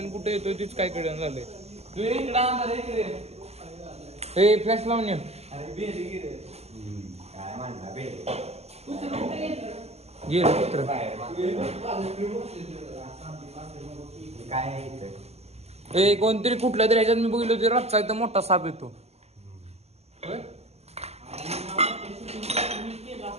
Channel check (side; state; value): left; late; 0.30 ms